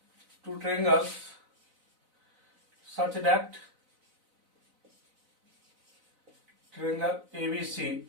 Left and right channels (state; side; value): late; left; 4.0 ms